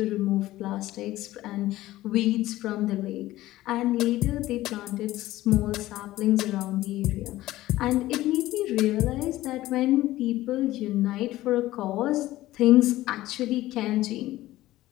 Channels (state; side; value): quieter; right; 16.1 dB